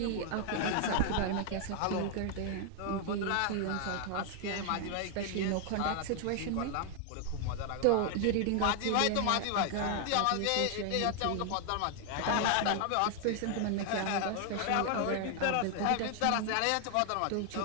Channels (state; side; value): different; both; correlation 0.00